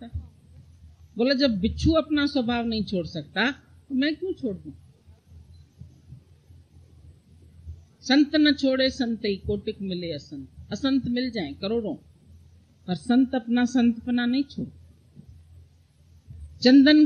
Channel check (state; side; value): identical; both; correlation 1.00